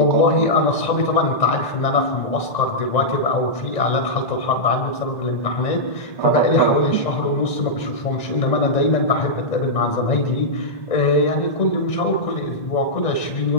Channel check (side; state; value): right; late; 1.9 ms